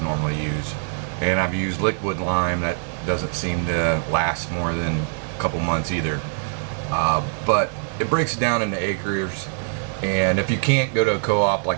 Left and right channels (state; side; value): silent; left; 58 dB below the other